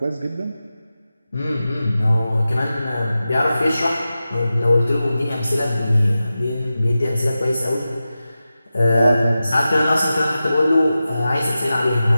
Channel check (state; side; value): inverted; both; correlation -0.93